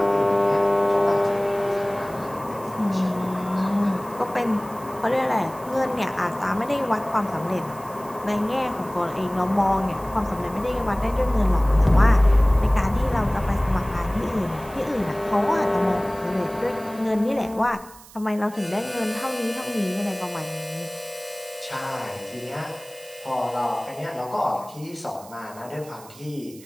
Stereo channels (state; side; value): noise; right; hiss, 21 dB below the sound